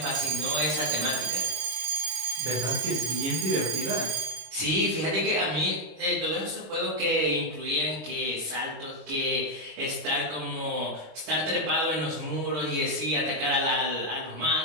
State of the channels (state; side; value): late; left; 26 ms